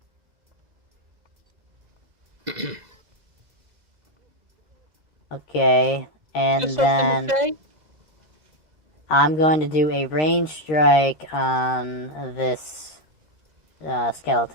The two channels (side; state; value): left; late; 2.0 ms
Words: okay, and Just something to then say? I'm going to do a range strike on this